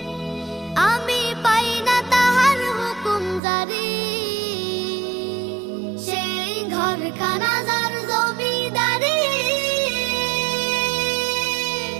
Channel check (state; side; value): drops out; left; at 3.4 s